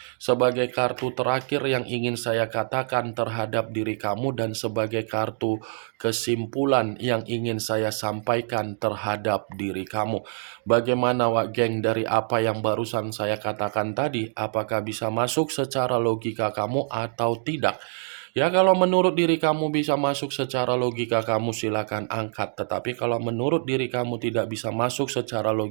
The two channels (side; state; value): left; silent; digital silence